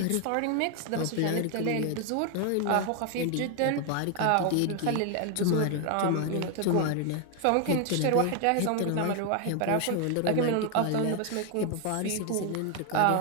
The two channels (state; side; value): different; both; correlation 0.01